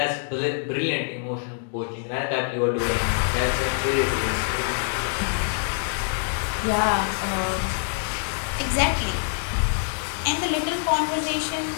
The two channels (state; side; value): silent; right; digital silence